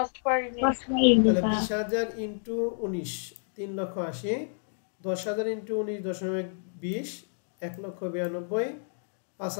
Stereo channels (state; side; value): silent; right; digital silence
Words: per unit. তাহলে 20,000 ইনটু 19 3,80,000, 10,000 ইনটু 19.20 1,92,000,